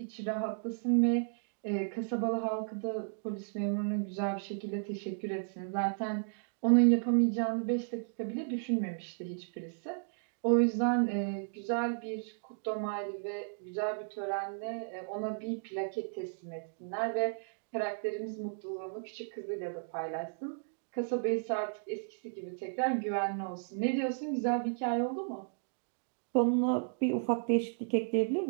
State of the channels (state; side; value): silent; left; digital silence